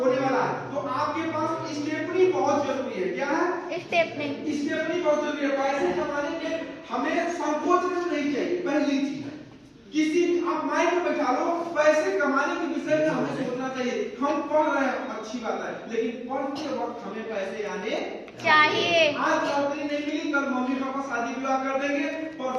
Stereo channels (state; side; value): identical; both; correlation 1.00